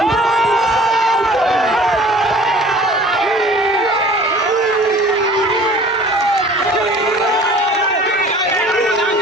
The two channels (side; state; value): both; normal; correlation 0.48